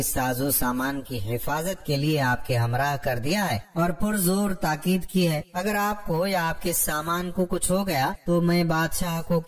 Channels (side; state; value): both; identical; correlation 1.00